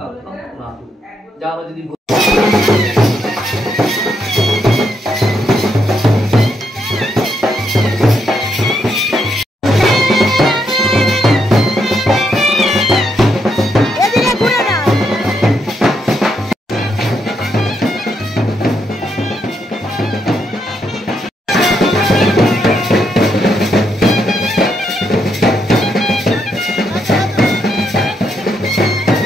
পুনাতু। যা আমরা যদি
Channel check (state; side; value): normal; both; correlation 0.78